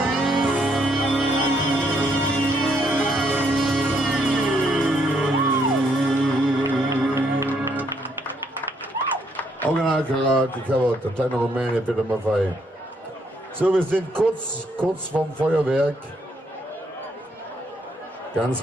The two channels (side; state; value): both; normal; correlation 0.72